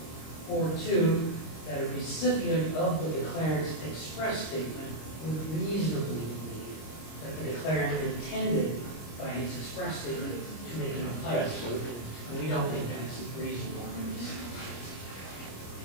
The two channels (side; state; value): right; late; 25 ms